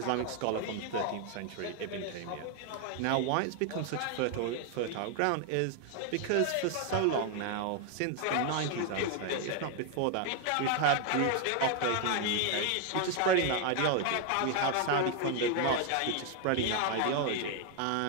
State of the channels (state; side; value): different; both; correlation 0.00